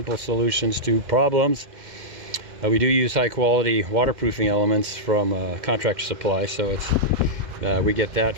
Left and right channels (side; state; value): left; late; 2.1 ms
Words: solutions to problems. We do use high quality waterproofing elements from Contractor Supply, so it's we get that